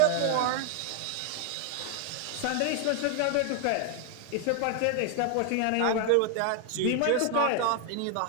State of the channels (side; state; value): both; different; correlation 0.00